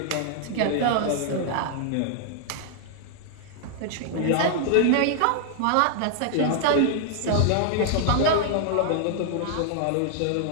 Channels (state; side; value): different; both; correlation -0.01